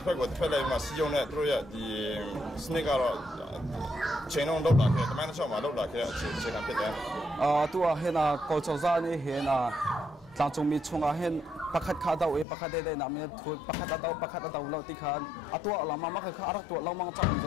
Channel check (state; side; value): drops out; right; at 12.5 s